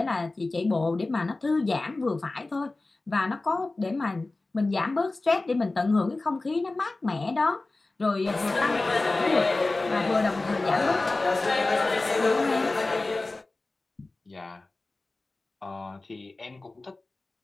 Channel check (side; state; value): right; quieter; 3.2 dB